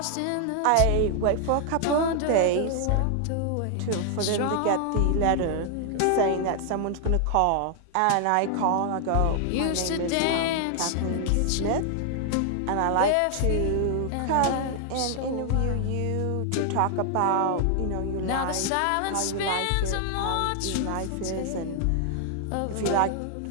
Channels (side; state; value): both; different; correlation 0.00